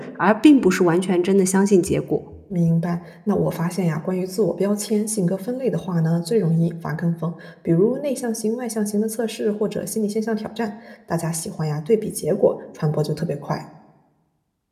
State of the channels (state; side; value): identical; both; correlation 1.00